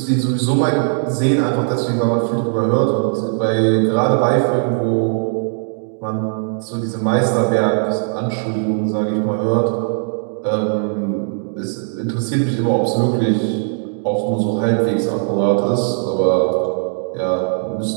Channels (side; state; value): left; silent; digital silence